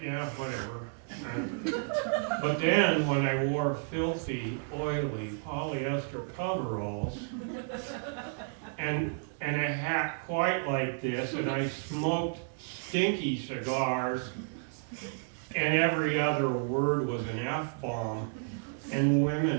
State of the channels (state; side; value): silent; left; digital silence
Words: yeah, whatever. But then when I wore filthy, oily polyester coveralls and a hat quite like this, and I smoked stinky cigars, and every other word was an F-bomb, and